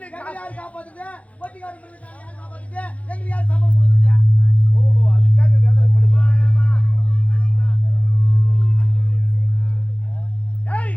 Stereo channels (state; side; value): late; right; 0.065 ms